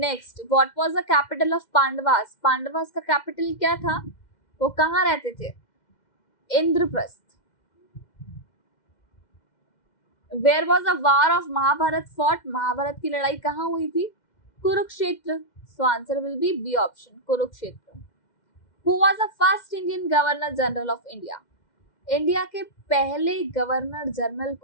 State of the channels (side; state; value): right; late; 2.1 ms